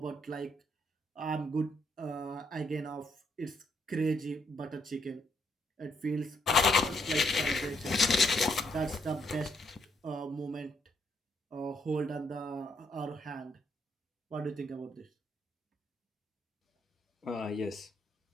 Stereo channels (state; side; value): normal; both; correlation 0.74